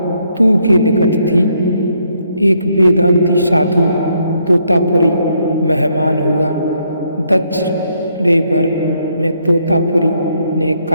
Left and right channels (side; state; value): both; inverted; correlation -0.73